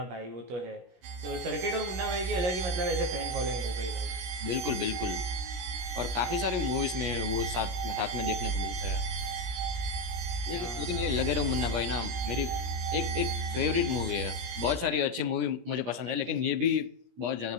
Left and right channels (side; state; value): left; late; 17 ms